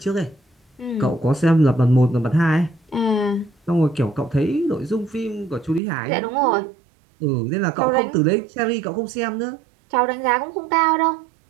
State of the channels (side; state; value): left; drops out; at 5.8 s